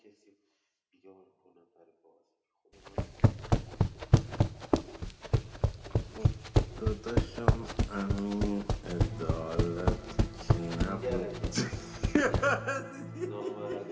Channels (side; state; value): both; identical; correlation 1.00